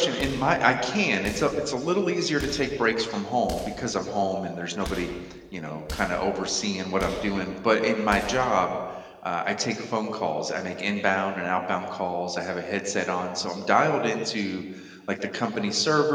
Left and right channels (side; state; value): both; identical; correlation 1.00